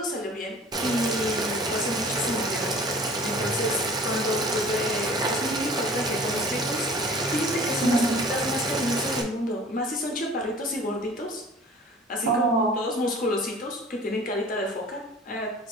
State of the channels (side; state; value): both; normal; correlation 0.46